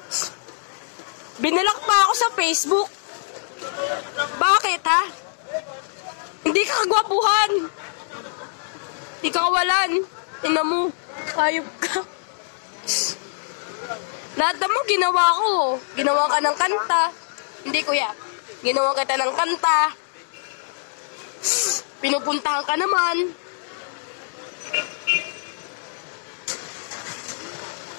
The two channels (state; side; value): silent; right; digital silence